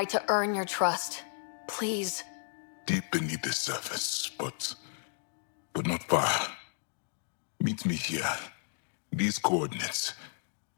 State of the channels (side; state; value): right; silent; 56 dB below the other